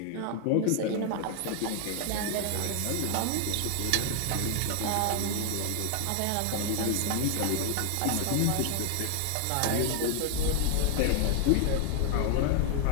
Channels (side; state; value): both; different; correlation 0.00